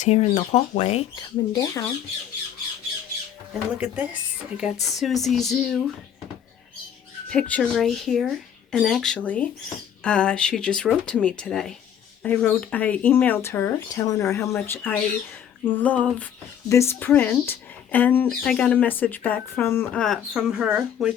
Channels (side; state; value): right; quieter; 9.1 dB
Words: here in the hallway coming down. And look at this. I got Susie Zoo picture right here. And actually, she just wrote to me today. I emailed her telling her how much I love this print, and I got a message back from her,